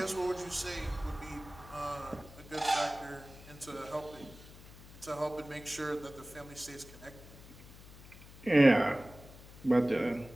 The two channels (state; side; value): noise; left; hum, 18 dB below the sound